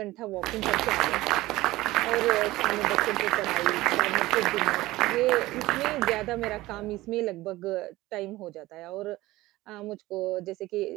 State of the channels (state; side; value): quieter; left; 18.1 dB